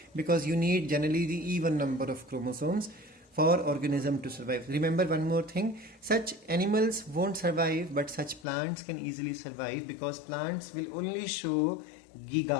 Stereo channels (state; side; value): drops out; right; at 8.5 s